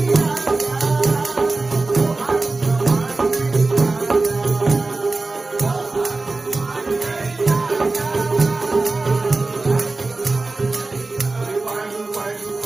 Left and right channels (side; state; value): left; quieter; 3.4 dB